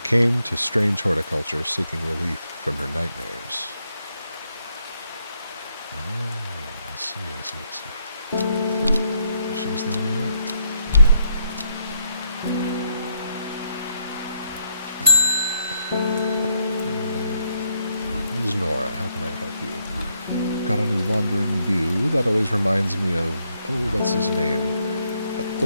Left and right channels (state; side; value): inverted; both; correlation -0.76